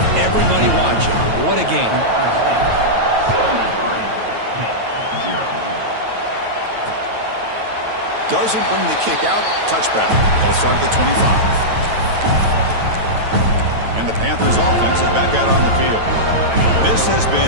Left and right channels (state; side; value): late; left; 9.2 ms